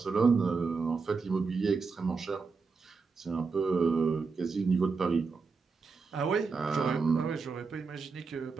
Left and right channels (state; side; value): quieter; left; 4.7 dB